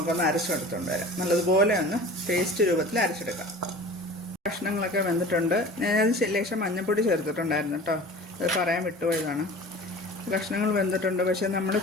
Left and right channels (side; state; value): both; normal; correlation 0.40